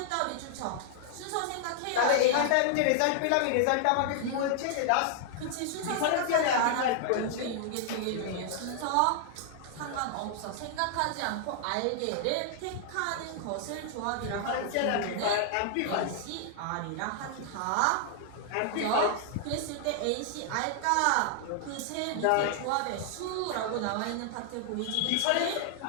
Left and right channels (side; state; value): both; different; correlation -0.01